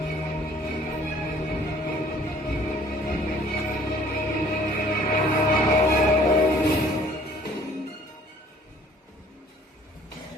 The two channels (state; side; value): normal; both; correlation 0.55